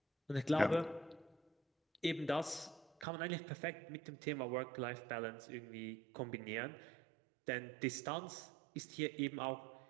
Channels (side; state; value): left; drops out; at 3.1 s